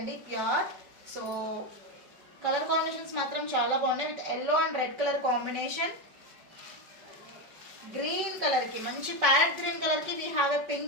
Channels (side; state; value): left; late; 5.2 ms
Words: ప్యూర్. సో కలర్ కాంబినేషన్స్ మాత్రం చాలా బాగున్నాయి. With yellow and red colour combination. Green కలర్కి మంచి ప్యారెట్ గ్రీన్ కలర్కి we have a